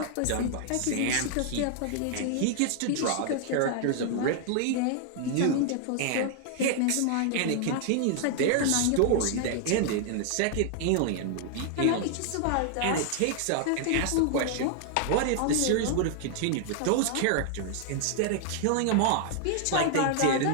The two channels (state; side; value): different; both; correlation 0.00